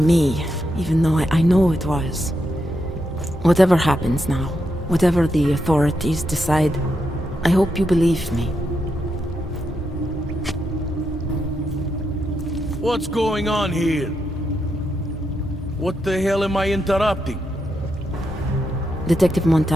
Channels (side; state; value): both; normal; correlation 0.83